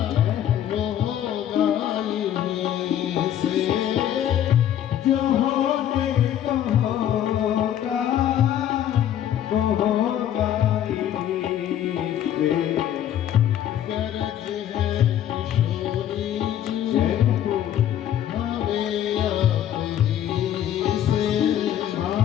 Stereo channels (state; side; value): quieter; right; 10.8 dB